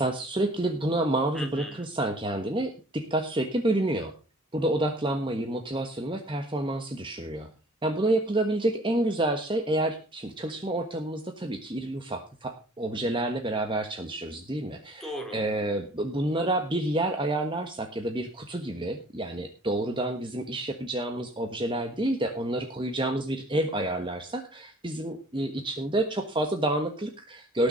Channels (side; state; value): both; normal; correlation 0.52